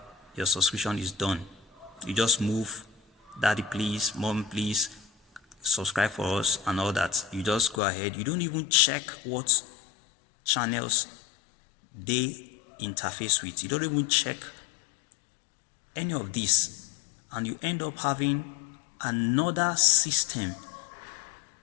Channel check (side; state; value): right; drops out; at 7.8 s